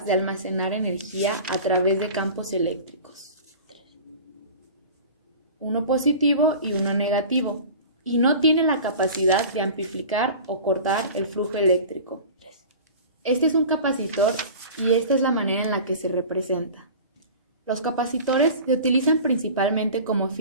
de almacenar energía a través de campos eléctricos, uno positivo y uno negativo, y no tiene la capacidad de amplificar o cortar el flujo eléctrico. Este es un capacitor y esta es la manera en la que se representa. Los capacitores se utilizan principalmente como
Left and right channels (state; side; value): inverted; both; correlation -0.38